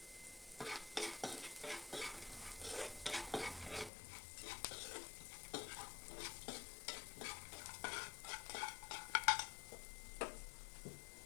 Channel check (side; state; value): right; drops out; at 3.9 s